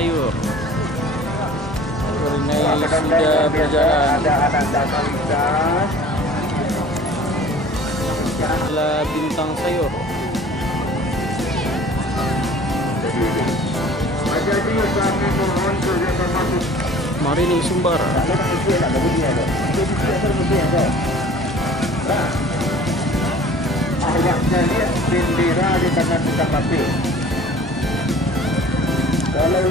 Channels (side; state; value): both; normal; correlation 0.47